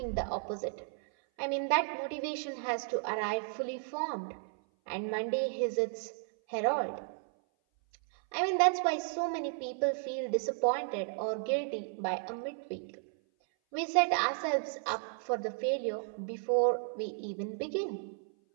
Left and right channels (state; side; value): silent; left; 55 dB below the other